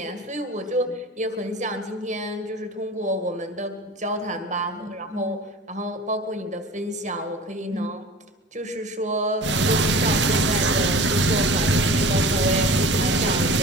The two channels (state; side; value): normal; both; correlation 0.39